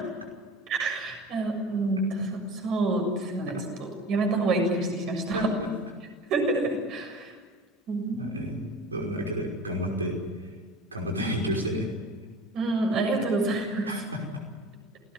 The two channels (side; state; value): both; normal; correlation 0.37